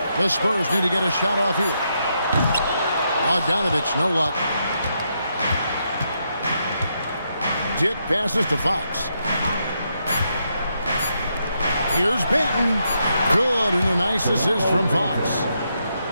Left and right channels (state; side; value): inverted; both; correlation -0.80